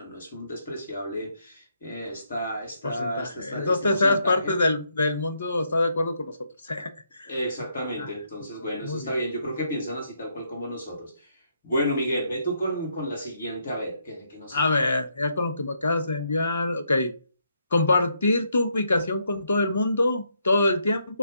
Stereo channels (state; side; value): inverted; both; correlation -0.75